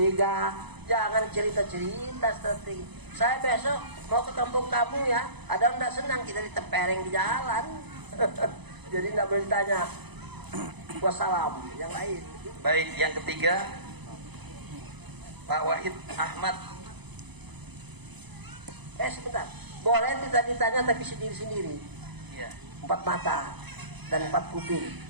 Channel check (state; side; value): late; left; 0.99 ms